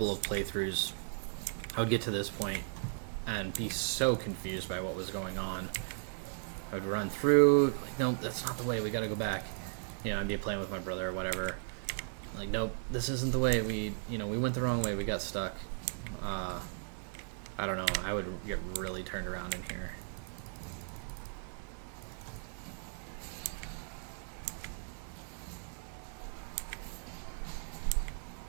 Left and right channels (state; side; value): silent; left; digital silence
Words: of playthroughs, I would get to this point and be so confused by what was going on. I would run through, like, no, that's not the way, we gotta go back. You know, I'd be playing with my brother or whatever. Like, nope, this isn't the way, we went the wrong way, we got stuck. I don't know, I would get really turned around in here.